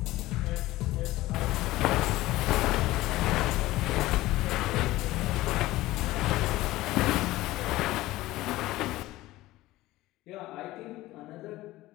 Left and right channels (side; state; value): right; quieter; 17.4 dB